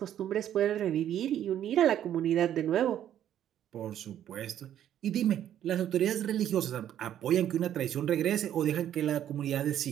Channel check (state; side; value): quieter; left; 10.8 dB